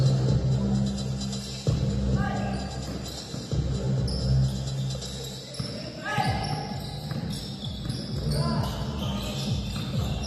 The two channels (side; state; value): both; identical; correlation 1.00